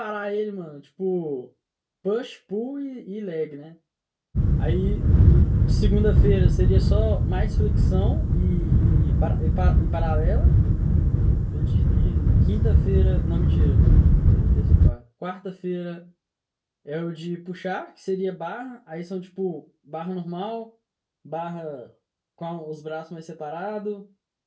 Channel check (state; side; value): identical; both; correlation 1.00